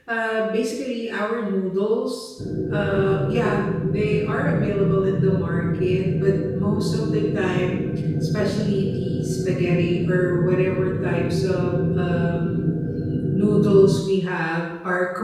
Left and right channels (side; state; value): both; identical; correlation 1.00